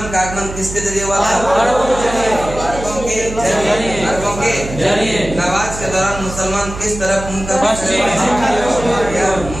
का आगमन किसके जरिए हुआ था? अरबों के जरिए। नमाज के दौरान मुसलमान किस तरफ मुंह कर?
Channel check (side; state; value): right; noise; hum, 10 dB below the sound